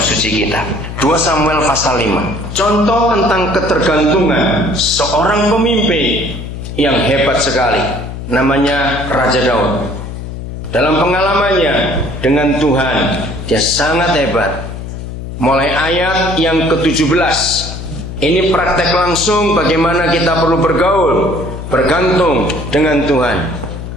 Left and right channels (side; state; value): left; noise; hum, 8 dB below the sound